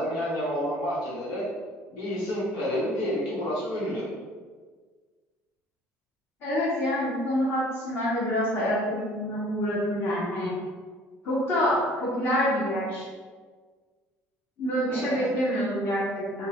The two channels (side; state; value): both; normal; correlation 0.53